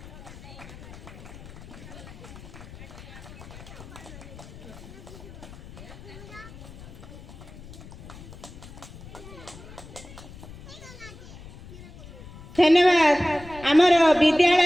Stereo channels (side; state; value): left; noise; rumble, 16 dB below the sound